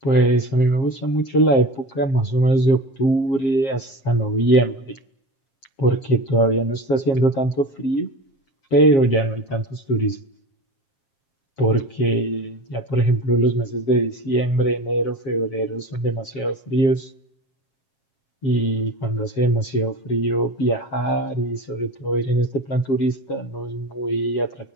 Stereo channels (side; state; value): right; late; 7.4 ms